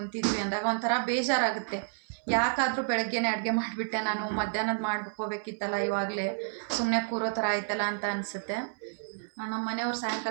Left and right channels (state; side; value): silent; left; 58 dB below the other